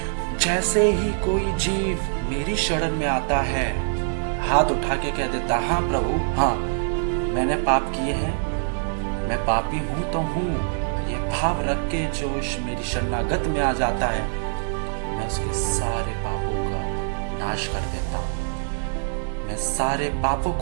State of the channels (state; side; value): silent; left; digital silence